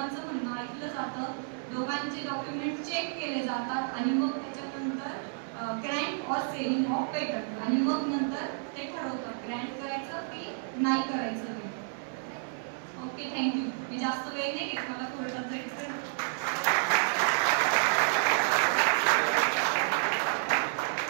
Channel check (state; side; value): silent; left; digital silence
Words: म्हणणं ऐकलं जातं, दोघांचे डॉक्युमेंट चेक केले जातात आणि मग त्याच्यानंतर Grant or selling of patent आणि मग नंतर ते ठरवतात ग्रँट करायचं की नाही करायचं ते. Okay, thank you. मी जास्त वेळ नाही घेत, मला कोर्टात जायचं.